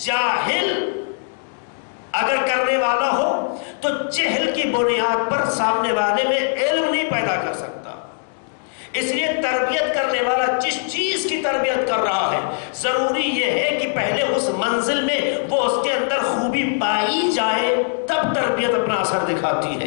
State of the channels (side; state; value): right; silent; digital silence